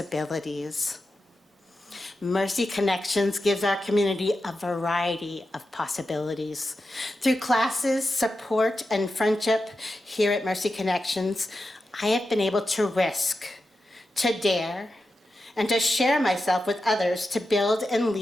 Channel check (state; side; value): normal; both; correlation 0.90